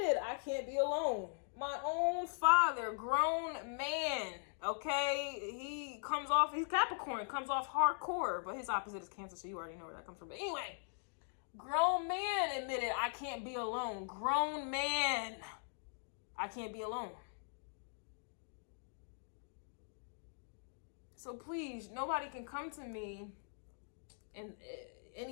I can't be alone. My own father, grown man, okay? He's Capricorn, comes off hardcore, but his opposite is Cancer, so you already know where that comes from. But anyway, grown man admitted, I can't be alone. Grown man, I can't be alone. So please, nobody can come to me and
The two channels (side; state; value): right; silent; digital silence